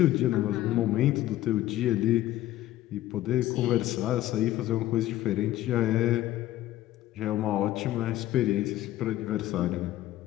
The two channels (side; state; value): right; quieter; 14.6 dB